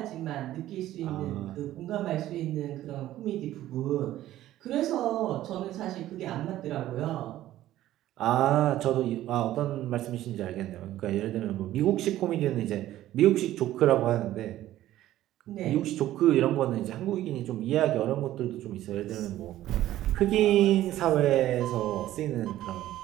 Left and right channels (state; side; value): quieter; left; 14.0 dB